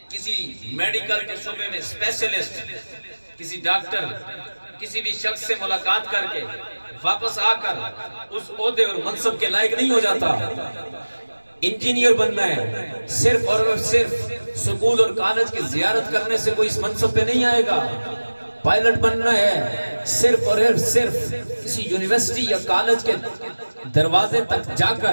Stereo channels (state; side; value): inverted; both; correlation -1.00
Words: کسی میڈیکل کے شعبے میں اسپیشلسٹ, کسی ڈاکٹر, کسی بھی شخص سے ملاقات کر کے واپس آ کر اس عہدے اور منصب کے لائق نہیں ہو جاتا. انجینئر بننا ہے, صرف اور صرف سکول اور کالج کی زیارت کرنے سے کوئی اس منصب پہ نہیں آئے گا. پائلٹ بننا ہے, صرف اور صرف کسی یونیورسٹی یا کالج کے دروازے تک جا